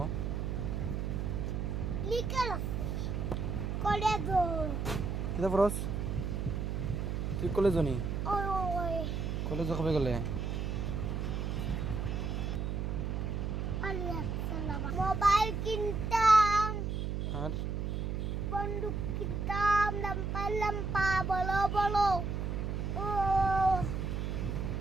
Liquor college. কিতা পড়স? তুই কলেজ নি? ওই কলেজে কবে গেলে? মোবাইল কিনতাম, আর বন্দুক কিনতাম, লাম্পা লাম্পা বলো বলো, ও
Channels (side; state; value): right; noise; hum, 2 dB below the sound